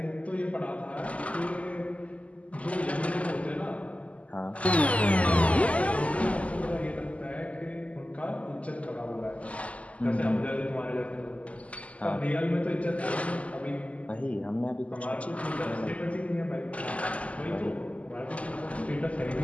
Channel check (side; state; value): right; late; 0.067 ms